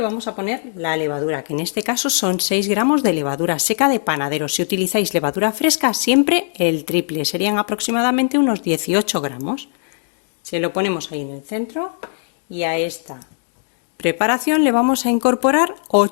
vamos a poner la levadura, que en este caso son 6 gramos de levadura seca de panadero. Si utilizáis levadura fresca, siempre el triple, serían aproximadamente unos 18 gramos. Se lo ponemos ahí en el centro y a esta preparación le vamos a incorporar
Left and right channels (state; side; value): silent; right; digital silence